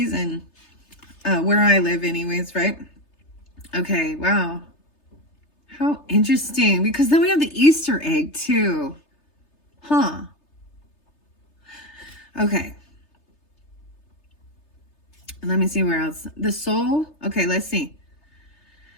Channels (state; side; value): late; right; 3.3 ms